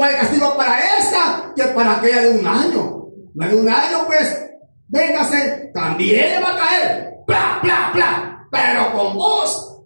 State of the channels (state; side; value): inverted; both; correlation -1.00